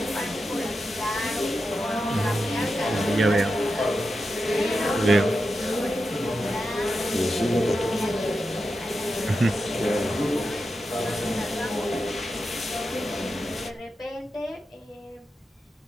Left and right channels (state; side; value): normal; both; correlation 0.89